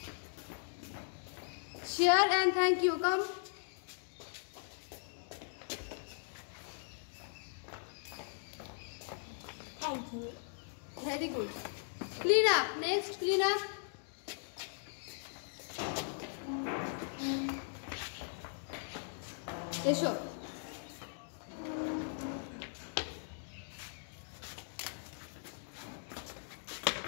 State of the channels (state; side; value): silent; right; digital silence